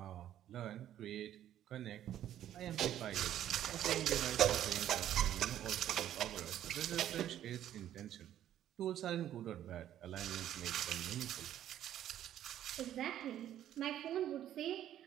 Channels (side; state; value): left; quieter; 11.5 dB